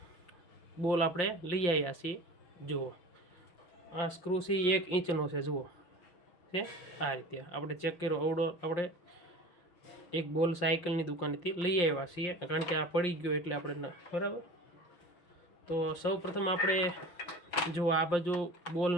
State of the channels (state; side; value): late; right; 5.7 ms